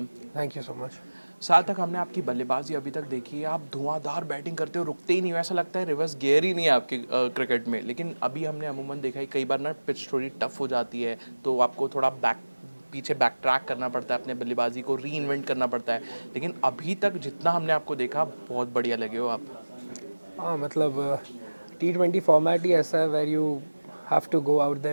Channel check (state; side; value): inverted; both; correlation -1.00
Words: Thank you so much. सार्थक, हमने आपकी बल्लेबाजी अभी तक देखी है, आप धुआंधार बैटिंग करते हो, रुकते ही नहीं हो, ऐसा लगता है रिवर्स गियर ही नहीं है आपके क्रिकेट में। लेकिन अभी हमने अमूमन देखा है कई बार ना पिच थोड़ी टफ हो जाती है, तो आपको थोड़ा पीछे बैक ट्रैक करना पड़ता है, अपने बल्लेबाजी को री इन्वेंट करना पड़ता है। लेकिन अभी तक जितना हमने आपको देखा, बहुत बढ़िया लगे हो आप। हाँ मतलब T20 फॉर्मेट ही ऐसा है where you have to go out